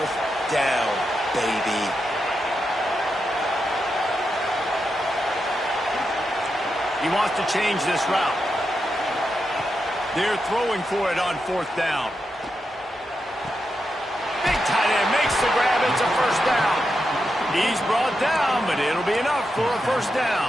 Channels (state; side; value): normal; both; correlation 0.86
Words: down, baby. He wants to change this route. They're throwing for it on 4th down. Big tight end makes the grab. It's a first down. He's brought down, but it'll be enough for a first